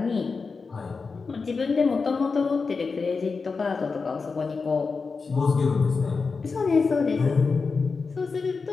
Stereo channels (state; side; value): quieter; right; 4.6 dB